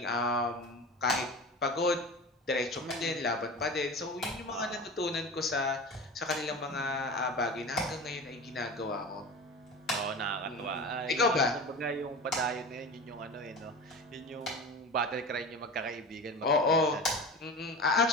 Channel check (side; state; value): both; normal; correlation 0.31